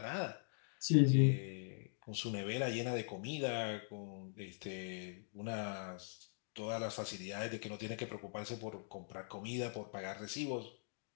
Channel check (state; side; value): silent; right; digital silence